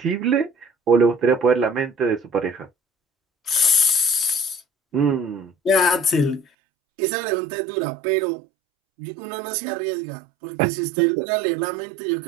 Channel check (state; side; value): drops out; left; at 6.5 s